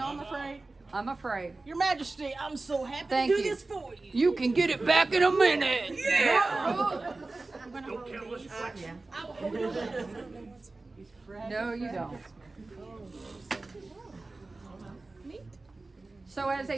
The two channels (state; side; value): quieter; left; 3.3 dB